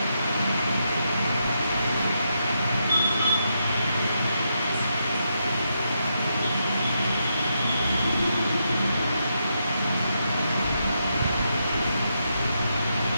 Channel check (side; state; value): both; inverted; correlation -0.82